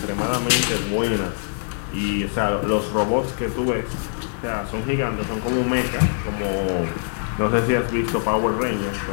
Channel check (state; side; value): silent; right; 63 dB below the other